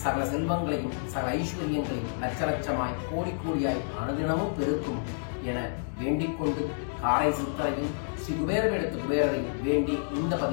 சகல செல்வங்களையும் சகல ஐஸ்வர்யங்களையும் லட்ச லட்சமாய் கோடி கோடியாய் அனுதினமும் பெருக்கும் என வேண்டிக்கொண்டு காரை சித்தரையும் ஸ்ரீ குபேரவேடத்து குபேரரையும் வேண்டி இந்த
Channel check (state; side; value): silent; right; digital silence